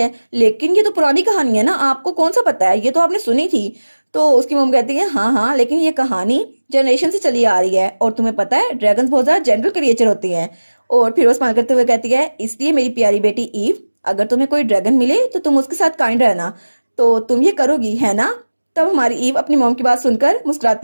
लेकिन ये तो पुरानी कहानी है ना, आपको कौन सा पता है, ये तो आपने सुनी थी। तो उसकी मम कहती है हाँ हाँ, लेकिन ये कहानी जनरेशन से चली आ रही है और तुम्हें पता है ड्रैगन्स बहुत ज़्यादा जेंटल क्रिएचर होते हैं। और फिर वो स्माइल करते हुए कहती है इसलिए मेरी प्यारी बेटी ईव, अगर तुम्हें कोई ड्रैगन मिले तो तुम उसके साथ काइंड रहना। तो तुम ये करोगी है ना। तब हमारी ईव अपनी मॉम की बात सुनकर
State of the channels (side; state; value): both; inverted; correlation -1.00